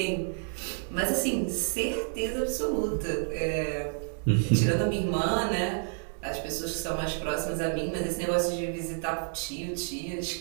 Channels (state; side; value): silent; left; digital silence